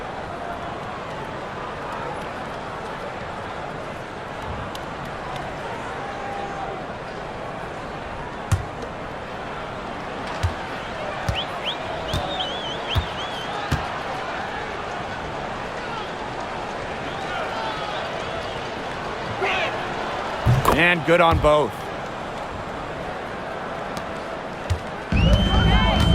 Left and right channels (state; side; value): identical; both; correlation 1.00